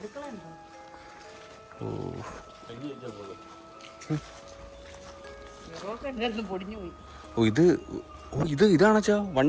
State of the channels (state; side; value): identical; both; correlation 1.00